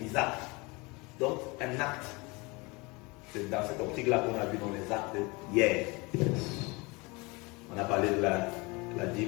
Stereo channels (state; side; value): quieter; right; 26.2 dB